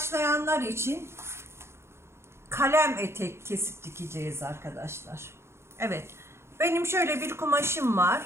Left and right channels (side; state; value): left; late; 0.12 ms